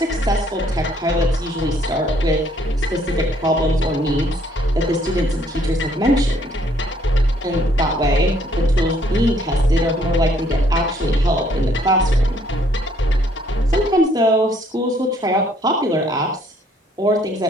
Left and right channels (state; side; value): normal; both; correlation 0.65